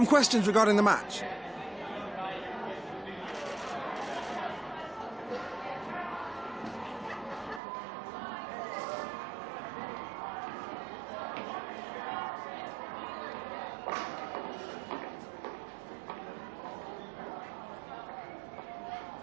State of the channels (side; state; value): left; drops out; at 7.6 s